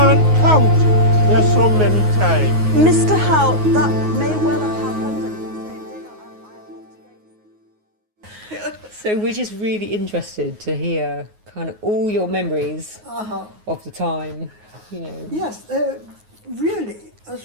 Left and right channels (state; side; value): late; left; 9.5 ms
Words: count. There's so many times. Mr. Howe, that may well have happened. So we're just really interested to hear kind of all your memories of the time, you know. Yes, really, as